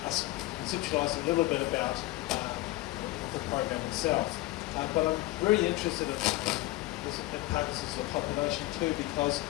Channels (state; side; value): quieter; right; 18.4 dB